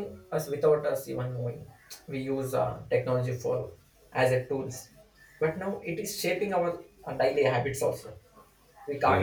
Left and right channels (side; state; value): both; identical; correlation 1.00